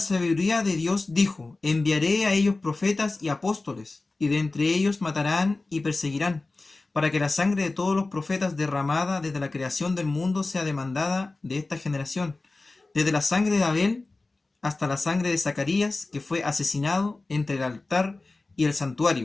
de Dios dijo, enviaré a ellos profetas y apóstoles, y de entre ellos matarán y perseguirán, para que la sangre de todos los profetas derramada desde la creación del mundo sea demandada de esta generación, desde la sangre de Abel hasta la sangre de Zacarías, que fue asesinado entre el altar y el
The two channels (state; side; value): quieter; right; 3.3 dB